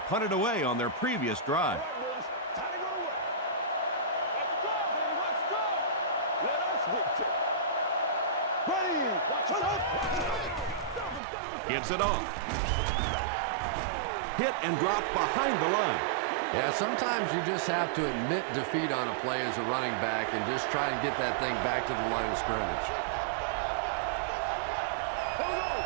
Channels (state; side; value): drops out; left; at 11.2 s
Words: it away on their previous drive. Gives it off. Hit and dropped behind the line. Yeah, sometimes you just have to admit defeat on a play as a running back and just try and get that thing back to the line of scrimmage.